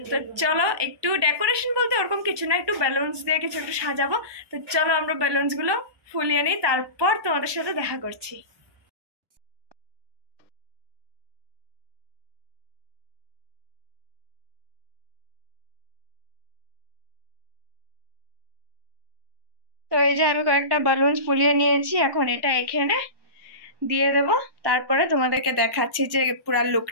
তো চলো, একটু ডেকোরেশন বলতে ওরকম কিছু না, একটু বেলুনস দিয়ে কিছু একটু সাজাবো। তো চলো আমরা বেলুনসগুলো ফুলিয়ে নিই, তারপর তোমাদের সাথে দেখা করছি। তো এই যে আমি কয়েকটা বালুন ফুলিয়ে নিয়েছি, এখন এটা এখানে দিয়ে দেব। তারপরে তোমাদেরকে দেখাচ্ছি যে পুরো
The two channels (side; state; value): left; late; 1.2 ms